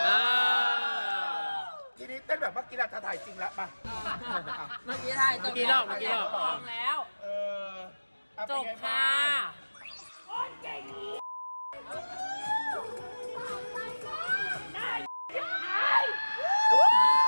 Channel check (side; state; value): both; inverted; correlation -1.00